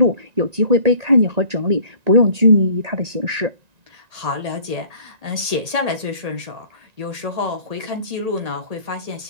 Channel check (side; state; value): left; late; 1.8 ms